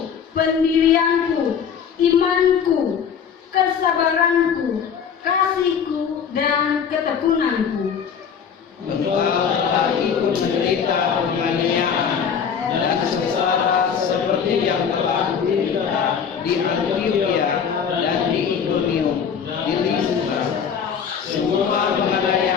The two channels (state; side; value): quieter; right; 7.2 dB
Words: pendirianku, imanku, kesabaranku, kasihku dan ketekunanku. Engkau telah ikut menderita penganiayaan dan sengsara seperti yang telah diderita di Antiokhia dan di Ikonium, di Listra. Semua